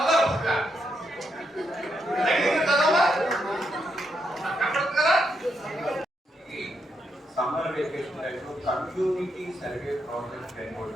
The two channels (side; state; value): both; normal; correlation 0.80